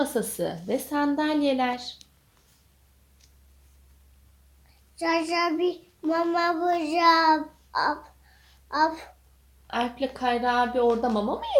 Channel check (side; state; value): both; identical; correlation 1.00